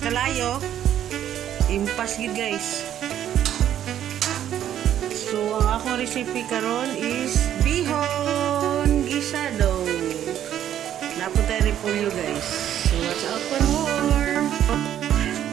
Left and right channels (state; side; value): quieter; left; 10.8 dB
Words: impas gid guys. So, ang akong recipe karon is bihon gisado. Napunta rin po yun guys. So, watch out for more.